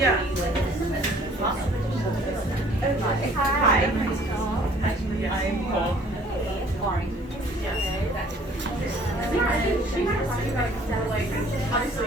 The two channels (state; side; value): normal; both; correlation 0.55